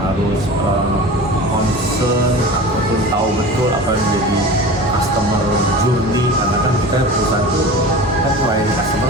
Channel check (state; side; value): normal; both; correlation 0.35